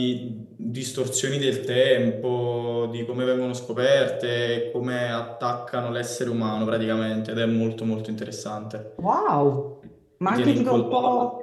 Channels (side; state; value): both; identical; correlation 1.00